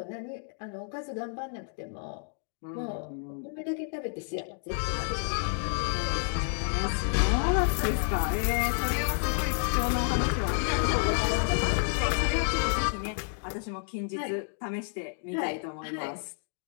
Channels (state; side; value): silent; right; digital silence